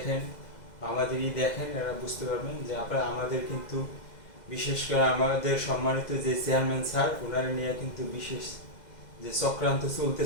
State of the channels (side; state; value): right; late; 2.0 ms